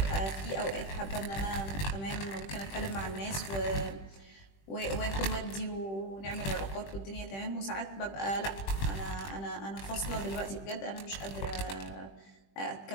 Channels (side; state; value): right; late; 20 ms